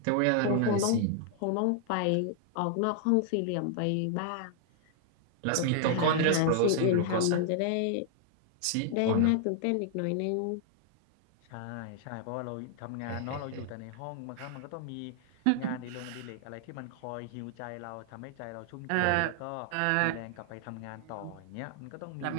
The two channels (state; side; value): different; both; correlation 0.00